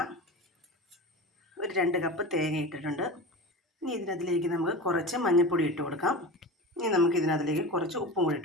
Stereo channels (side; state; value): both; normal; correlation 0.30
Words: ഒരു 2 കപ്പ് തേങ്ങ ഇട്ടിട്ടുണ്ട്. ഇനി ഇതിനകത്തിലേക്ക് നമുക്ക് കുറച്ച് മഞ്ഞൾപ്പൊടി ഇട്ട് കൊടുക്കാം. ഇനി നമുക്ക് ഇതിനകത്തിലേക്ക് കുറച്ച് ഉപ്പും കൂടി